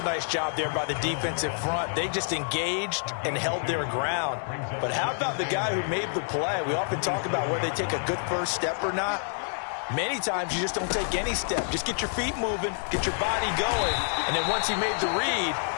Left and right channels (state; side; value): silent; right; digital silence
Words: nice job there by the defensive front. They just engaged and held their ground. But how about the guy who made the play? We often talk about whether they take a good first step or not. Many times you just don't take any step. Just get your feet moving, get your body going, and then once he made the read,